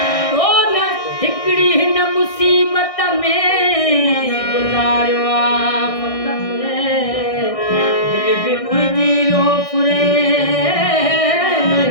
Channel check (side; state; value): right; late; 1.6 ms